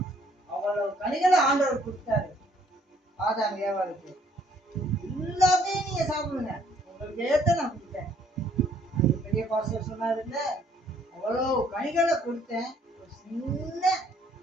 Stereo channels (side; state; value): both; normal; correlation 0.63